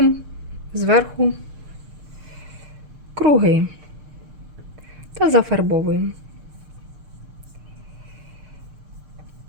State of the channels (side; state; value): left; late; 6.6 ms